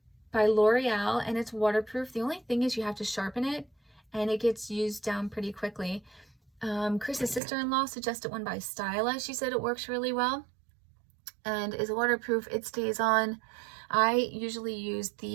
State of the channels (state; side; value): drops out; left; at 7.4 s